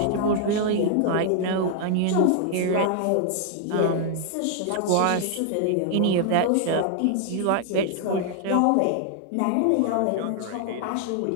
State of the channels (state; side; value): different; both; correlation 0.00